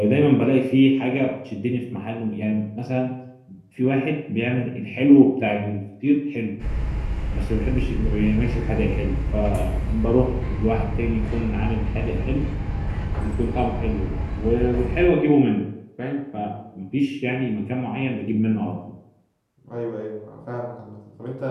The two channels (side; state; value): both; identical; correlation 1.00